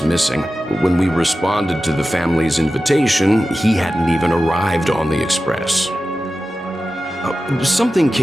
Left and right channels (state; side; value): normal; both; correlation 0.94